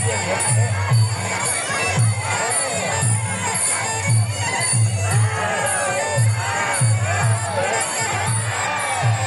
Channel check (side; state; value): both; identical; correlation 1.00